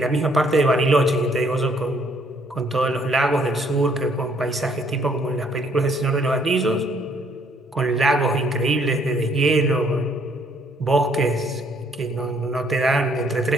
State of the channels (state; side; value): normal; both; correlation 0.65